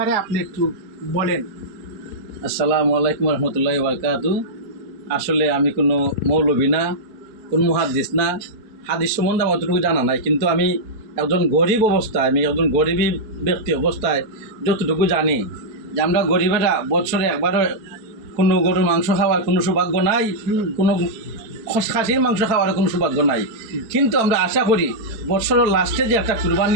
আপনি একটু বলেন। আসসালামু আলাইকুম রহমতুল্লাহি বারকাতু। আসলে আমি কোনো মৌলবী না, কোনো মুহাদ্দিস না, হাদিস সম্বন্ধে আমার অতটুকু জানা নাই। কিন্তু আমি একজন গরিব অবস্থায়, আমি একজন গরিবী ব্যক্তি অবস্থায় যতটুকু জানি যে আমরা গরিবেরা বছরে একবারও কোনো গরুর মাংস খাওয়ার কোনো সৌভাগ্য নাই, কোনো খাসির মাংস খাওয়ার কোনো সৌভাগ্য নাই। কিন্তু আমরা আশা করি বছরের লাস্টে যে একটা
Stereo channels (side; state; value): left; late; 4.7 ms